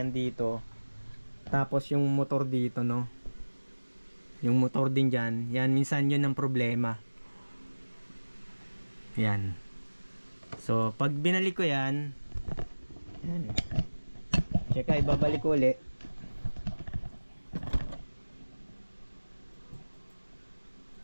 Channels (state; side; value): inverted; both; correlation -1.00